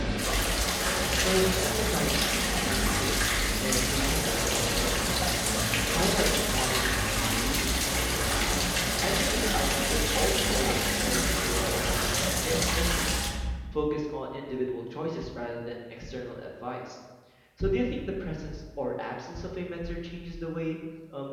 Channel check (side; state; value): both; identical; correlation 1.00